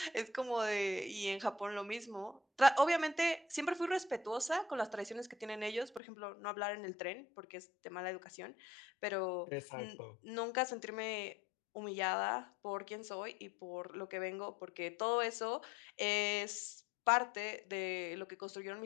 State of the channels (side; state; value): right; drops out; at 6.0 s